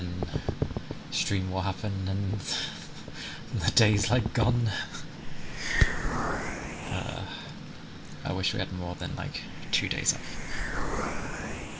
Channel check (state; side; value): identical; both; correlation 1.00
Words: stream will happen, and the day's like gone. I wish we had more than like 2 days off.